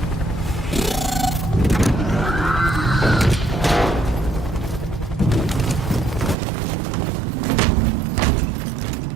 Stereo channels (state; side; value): drops out; left; at 6.4 s